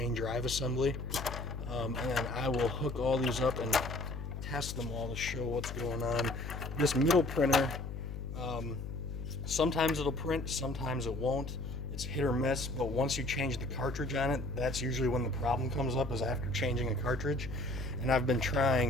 drive assembly. And then I will hook all these up and test them all to show what's going on. This middle printer, sometimes it'll print, sometimes it won't. It's hit or miss, but once you change the cartridge on it, that's usually when the problem comes up, is after changing a cartridge. And I've been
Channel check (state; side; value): noise; left; hum, 6 dB below the sound